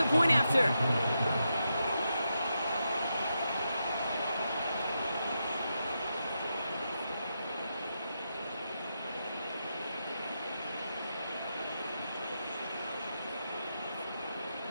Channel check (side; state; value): both; inverted; correlation -0.85